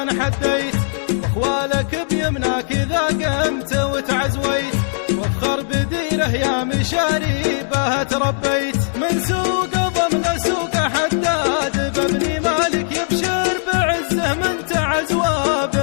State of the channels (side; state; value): right; silent; digital silence